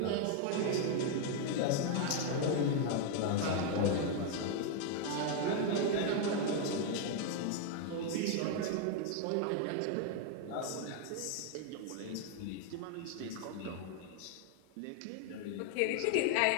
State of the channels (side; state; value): both; different; correlation 0.00